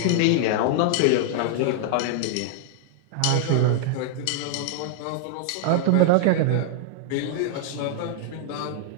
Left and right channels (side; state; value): both; different; correlation 0.00